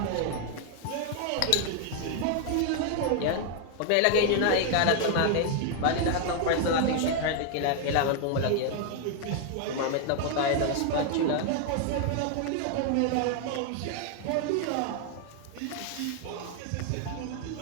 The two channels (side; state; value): both; different; correlation 0.00